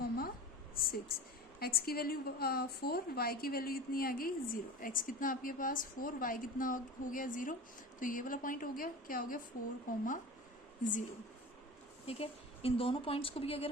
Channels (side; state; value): both; normal; correlation 0.34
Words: x की वैल्यू 4, y की वैल्यू कितनी आ गई 0, x कितना आपके पास 4, y कितना हो गया 0, तो ये वाला पॉइंट हो गया, क्या हो गया 4,0। ठीक है, इन दोनों पॉइंट्स को भी अगर